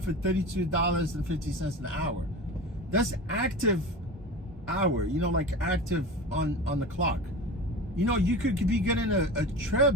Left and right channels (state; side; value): normal; both; correlation 0.31